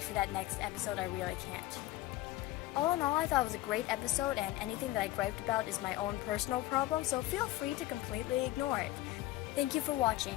for that next episode, I really can't. All in all, I thought it was a great episode, and anything that I griped about is my own personal problem, so feel free to completely ignore it. Thank you for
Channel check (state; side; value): quieter; right; 16.5 dB